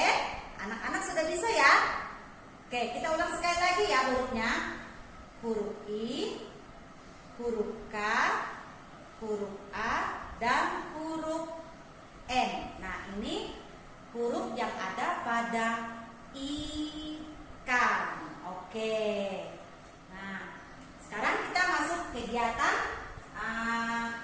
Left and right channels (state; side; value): identical; both; correlation 1.00